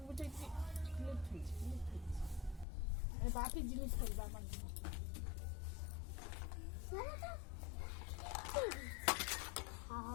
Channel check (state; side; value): drops out; right; at 2.7 s